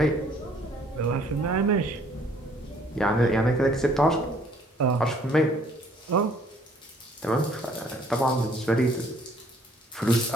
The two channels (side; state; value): both; normal; correlation 0.60